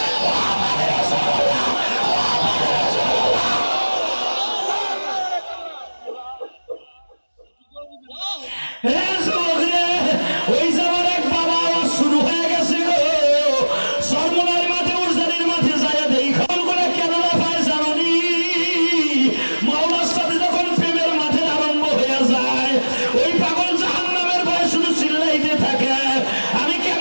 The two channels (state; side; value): inverted; both; correlation -1.00